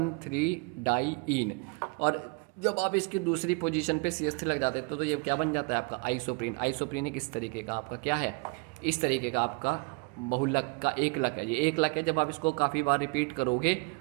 डाईइन। और जब आप इसकी दूसरी पोजीशन पे CH3 लग जाते तो ये क्या बन जाता है आपका आइसोप्रीन। आइसोप्रीन एक इस तरीके का आपका क्या है, इस तरीके का आपका बहुलक का एकलक है। ये एकलक है, जब आप इसको काफ़ी बार रिपीट करोगे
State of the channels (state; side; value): quieter; left; 31.5 dB